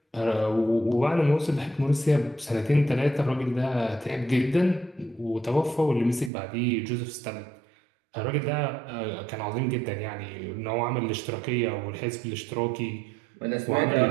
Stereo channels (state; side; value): drops out; left; at 6.3 s